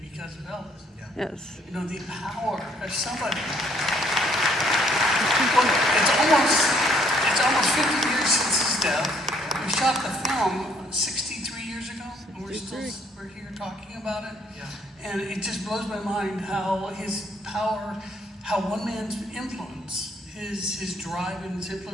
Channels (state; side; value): normal; both; correlation 0.65